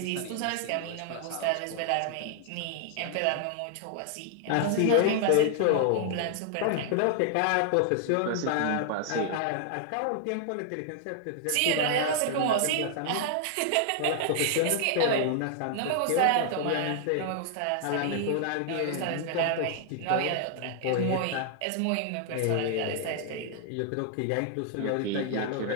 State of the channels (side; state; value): both; different; correlation -0.01